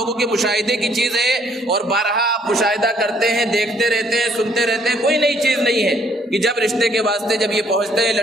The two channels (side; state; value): both; normal; correlation 0.65